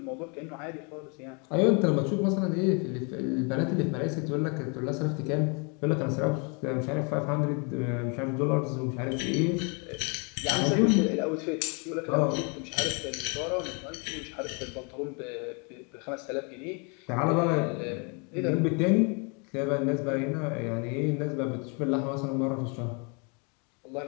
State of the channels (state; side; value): quieter; right; 34.7 dB